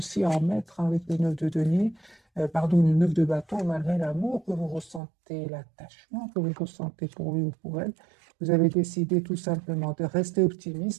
à en mettre, hein, avec le 9 de denier, pardon, le 9 de bâton, malgré l'amour que vous ressentez, l'attachement que vous ressentez pour lui ou pour elle. Vous avez décidé tout simplement de rester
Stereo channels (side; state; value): left; drops out; at 5.0 s